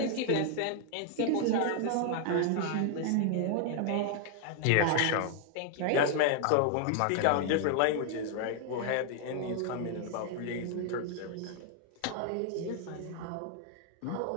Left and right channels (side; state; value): both; different; correlation 0.00